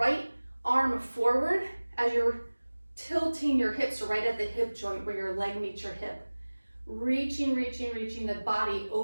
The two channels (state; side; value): inverted; both; correlation -1.00